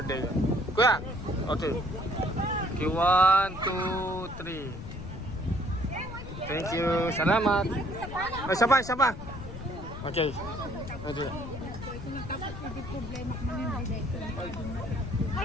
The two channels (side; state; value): left; noise; rumble, 10 dB below the sound